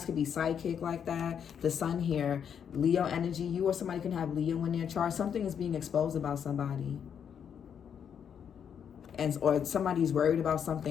could be psychic like that. The sun here, Leo energy. You or somebody can have Leo in their chart. Something is being exposed about somebody. Or somebody's worried about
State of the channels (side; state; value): right; quieter; 7.9 dB